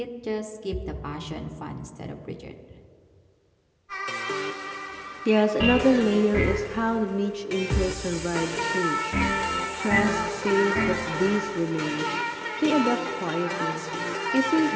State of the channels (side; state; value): both; identical; correlation 1.00